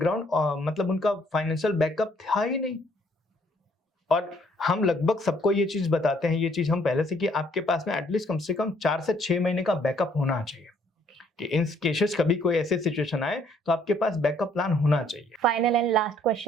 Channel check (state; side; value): normal; both; correlation 0.65